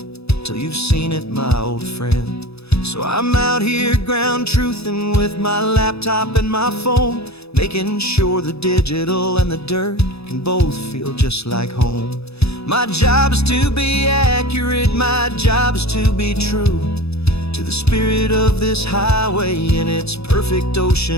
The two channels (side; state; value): right; late; 0.79 ms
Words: till you've seen it, my old friend. So I'm out here ground truthing with my laptop and my phone, making sure the digital and the dirt can both feel just like home. My job is to be accurate, my job is to be true to the spirit of this highway in its perfect